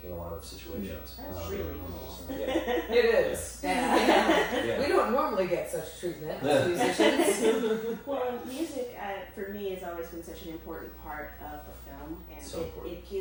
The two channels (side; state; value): both; identical; correlation 1.00